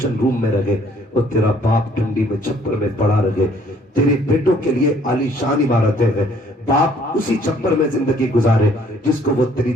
روم میں رہے اور تیرا باپ ٹھنڈی میں چھپر میں پڑا رہے، تیرے بیٹوں کے لیے عالی شان عمارتیں ہیں، باپ اسی چھپر میں زندگی گزارے جس کو وہ تیری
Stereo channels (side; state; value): both; normal; correlation 0.61